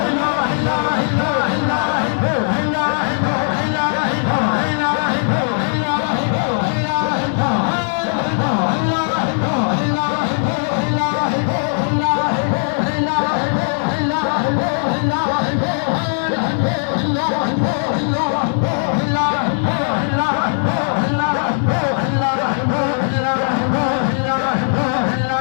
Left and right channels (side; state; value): right; silent; 58 dB below the other